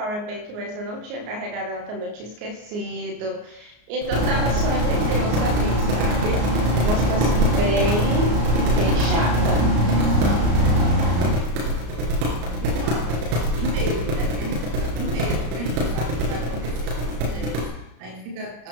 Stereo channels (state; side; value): late; left; 33 ms